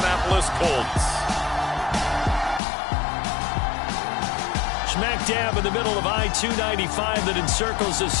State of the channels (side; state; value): right; drops out; at 2.6 s